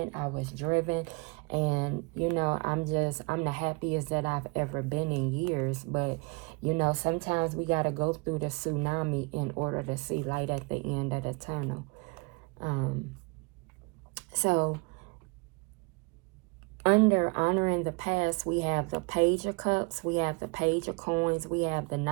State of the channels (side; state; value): left; quieter; 29.9 dB